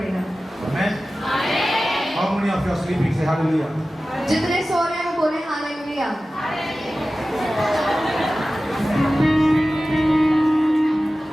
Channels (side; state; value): both; normal; correlation 0.95